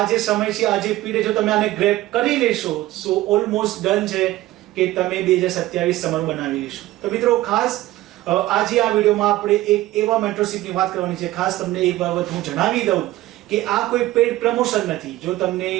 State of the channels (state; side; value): quieter; left; 16.6 dB